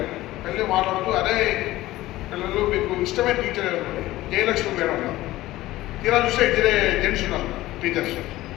వెళ్ళి మాట్లాడుతూ అదే పిల్లలు మీకు ఇష్టమైన టీచర్ ఎవరు? జయలక్ష్మి మేడం ఉన్నారు. తీరా చూస్తే ఇద్దరే జెంట్స్ ఉన్నారు టీచర్స్.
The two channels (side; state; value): right; quieter; 16.7 dB